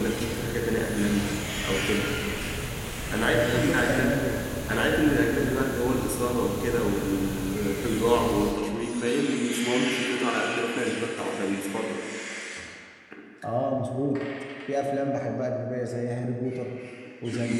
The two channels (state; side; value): identical; both; correlation 1.00